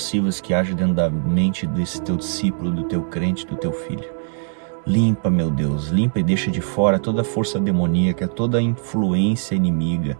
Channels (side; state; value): left; silent; 65 dB below the other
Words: que age dentro da mente desse teu discípulo, do teu crente, do teu filho. Limpa, meu Deus, limpa e deixa de fora toda a força demoníaca, toda a influência inimiga,